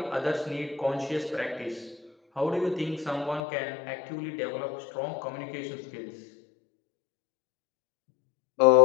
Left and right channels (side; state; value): right; drops out; at 3.4 s